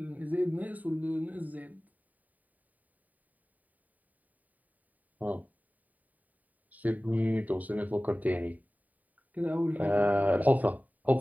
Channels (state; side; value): late; left; 0.076 ms